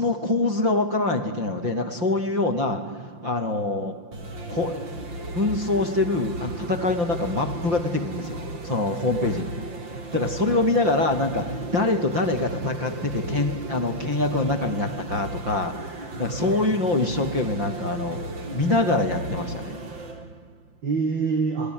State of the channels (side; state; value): left; late; 5.8 ms